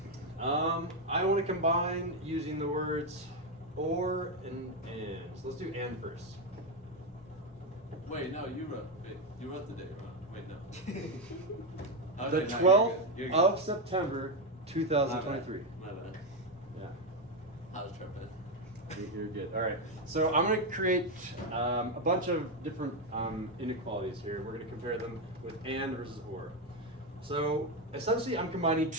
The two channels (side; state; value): both; normal; correlation 0.07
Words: I want to combine using the words or and. So let's do and first. Wait, no, you wrote the date wrong. Wait, no. The 12th of September, 2023. My bad. Yeah. I was tripping. You're good. All right. So I'm going to create a bunch of different inequalities here. We're going to compare them with and versus or. So essentially, I'm combining